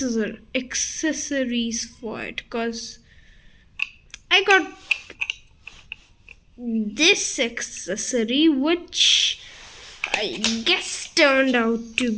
for it, because I got this accessory which I guess turned out to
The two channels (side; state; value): both; identical; correlation 1.00